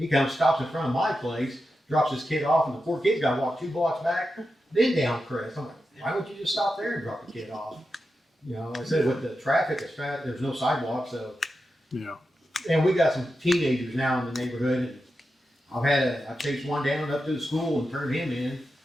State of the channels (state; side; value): normal; both; correlation 0.90